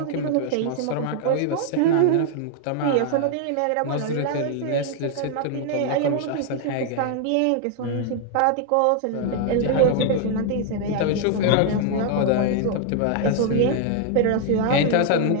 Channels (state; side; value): different; both; correlation 0.00